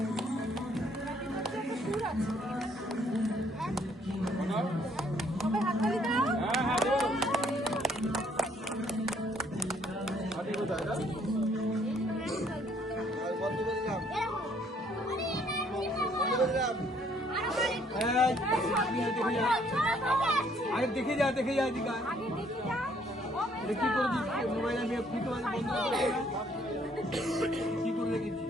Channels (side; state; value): both; normal; correlation 0.65